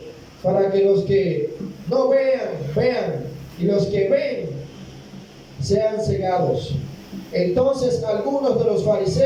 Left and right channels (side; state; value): both; identical; correlation 1.00